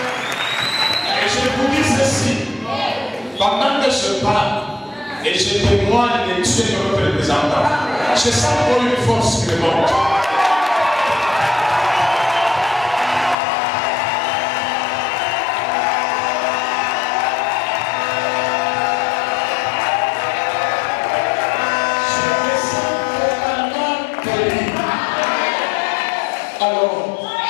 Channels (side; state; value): right; drops out; at 13.4 s